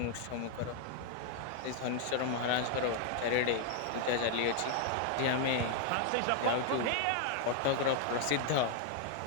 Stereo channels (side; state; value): both; different; correlation 0.00